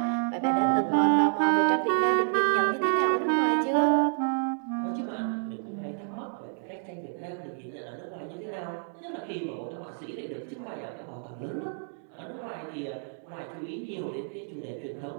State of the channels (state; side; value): silent; left; digital silence